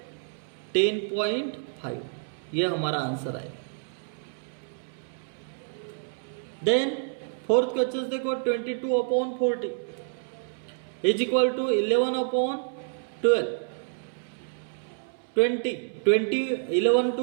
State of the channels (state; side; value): silent; left; 59 dB below the other